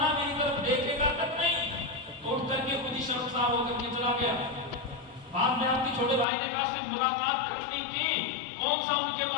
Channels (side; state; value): right; drops out; at 6.2 s